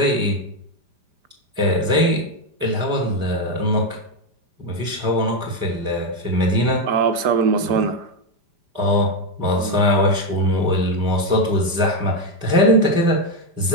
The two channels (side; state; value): left; late; 5.0 ms